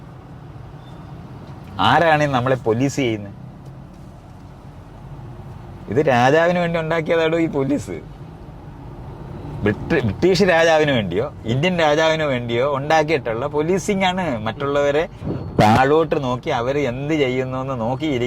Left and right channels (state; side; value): identical; both; correlation 1.00